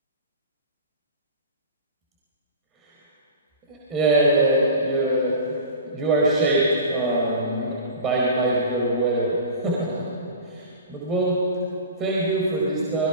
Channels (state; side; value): inverted; both; correlation -0.34